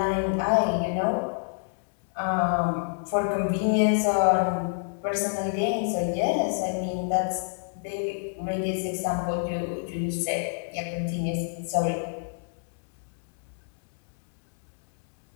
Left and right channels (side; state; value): right; silent; digital silence